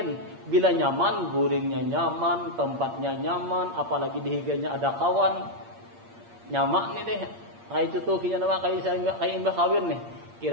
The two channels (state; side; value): late; left; 8.6 ms